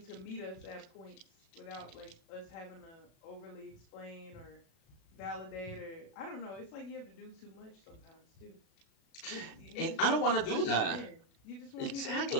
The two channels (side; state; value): right; late; 36 ms